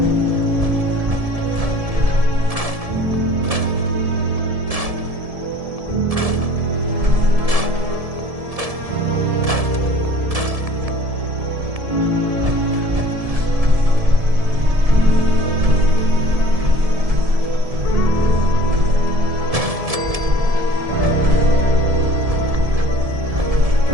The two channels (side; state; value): left; late; 1.7 ms